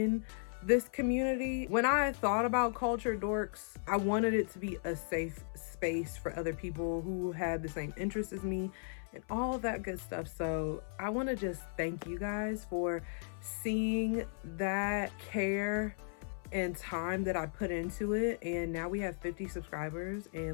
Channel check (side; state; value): right; silent; 54 dB below the other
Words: this community. When I thought about Culture Dorks, I wanted it to be a safe space for other people who had the same interests as me and all of that good stuff. So I want to just thank you guys for seeing that care and time that I put into it, and now we have 50 subscribers